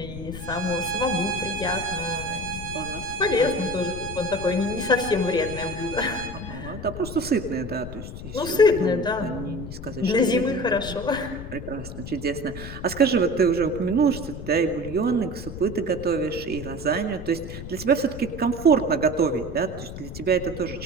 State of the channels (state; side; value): noise; left; rumble, 10 dB below the sound